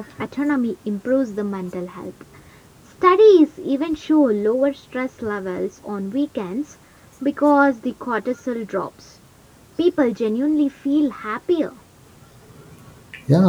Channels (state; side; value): identical; both; correlation 1.00